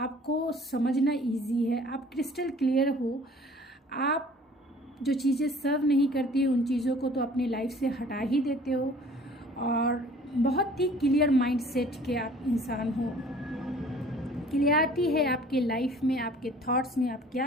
समझना इजी है, आप क्रिस्टल क्लियर हो। आप जो चीज़ें सर्व नहीं करती है, उन चीज़ों को तो अपनी लाइफ से हटा ही देते हो, और बहुत ही क्लियर माइंड सेट के आप इंसान हो। क्लियरिटी है आपके लाइफ में, आपके थॉट्स में, आप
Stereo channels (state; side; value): normal; both; correlation 0.51